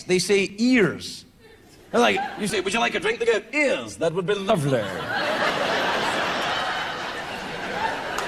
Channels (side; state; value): both; identical; correlation 1.00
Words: They say ears. They're like, you say, "Would you like a drink?" They go, "Ears. That would be lovely."